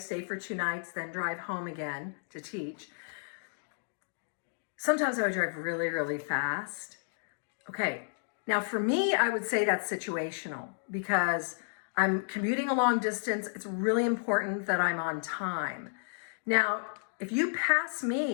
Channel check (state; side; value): silent; right; digital silence